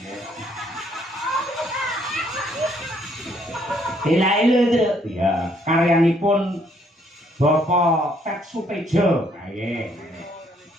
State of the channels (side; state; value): both; normal; correlation 0.67